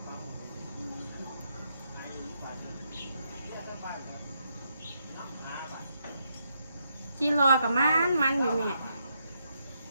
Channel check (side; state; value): both; inverted; correlation -0.79